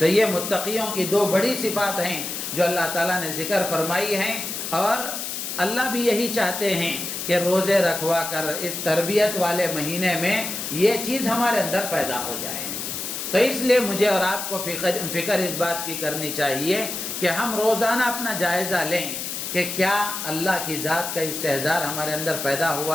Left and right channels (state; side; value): noise; left; hiss, 5 dB below the sound